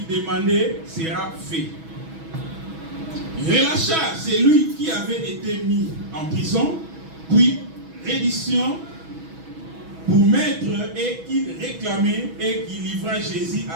demandait sera fait. Il relâcha celui qui avait été mis en prison, puis reddition pour mettre et qu'il réclamait et qu'il livra Jésus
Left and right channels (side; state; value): left; late; 6.2 ms